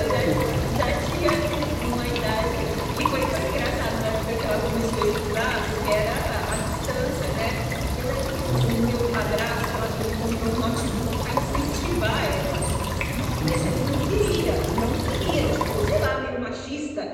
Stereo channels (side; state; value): both; identical; correlation 1.00